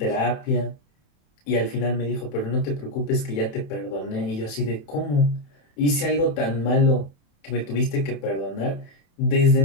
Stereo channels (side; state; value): right; late; 28 ms